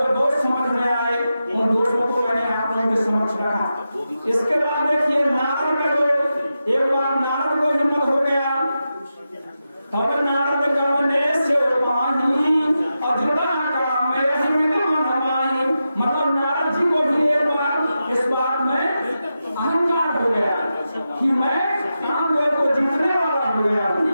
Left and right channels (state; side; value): inverted; both; correlation -0.90